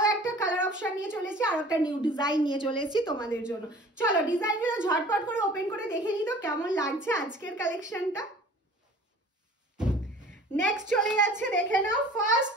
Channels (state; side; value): normal; both; correlation 0.47